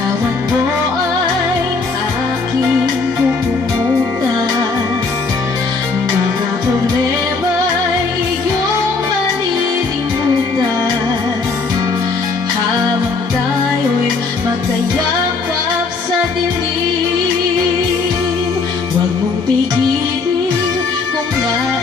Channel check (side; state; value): right; quieter; 4.3 dB